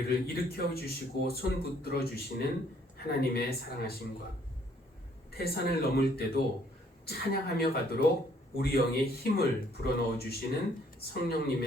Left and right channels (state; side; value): normal; both; correlation 0.64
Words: 일으켜 주시고 손 붙들어 주시는 하나님의 사랑하심과 태산을 넘을 때도 찬양하며 가도록 우리 영에 힘을 불어넣어 주시는